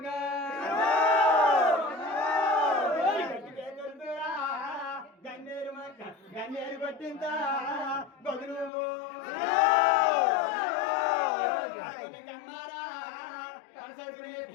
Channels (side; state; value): right; drops out; at 8.7 s